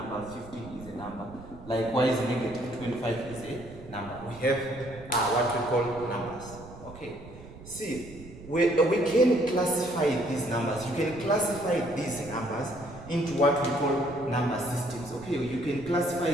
15 is a number. Likewise, negative 25 is a number. We have what we call numbers. Okay. See, we can classify these numbers. You can classify these numbers into what we call number systems. Okay, you can classify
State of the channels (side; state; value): right; noise; rumble, 17 dB below the sound